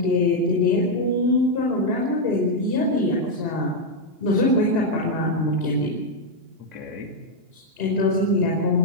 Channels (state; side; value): late; left; 2.9 ms